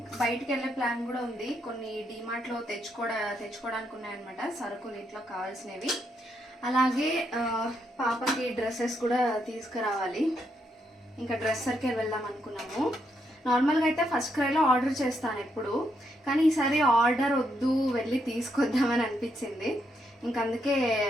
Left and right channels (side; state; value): both; normal; correlation 0.78